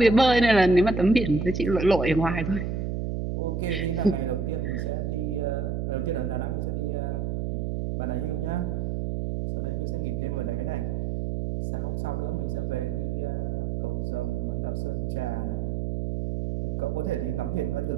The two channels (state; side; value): noise; right; hum, 1 dB below the sound